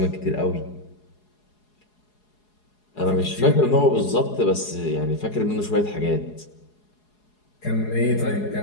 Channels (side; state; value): right; late; 4.8 ms